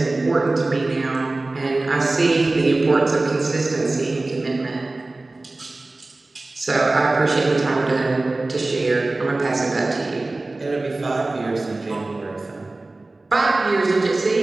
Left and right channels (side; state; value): left; quieter; 3.1 dB